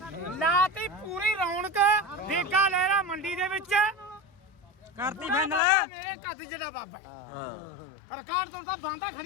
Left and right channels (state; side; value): drops out; right; at 5.6 s